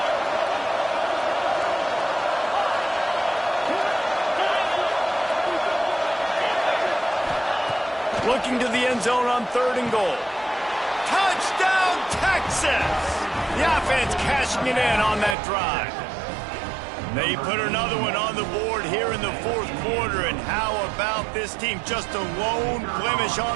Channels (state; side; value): drops out; left; at 15.4 s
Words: Looking to the end zone on 3rd and goal. Touchdown, Texas! The offense cashing it in on that drive. They put another one on the board here in the 4th quarter, and how about this team? Just a lone blemish